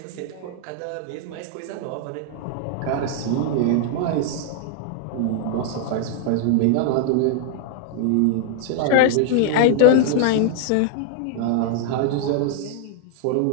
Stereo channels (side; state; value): both; different; correlation -0.01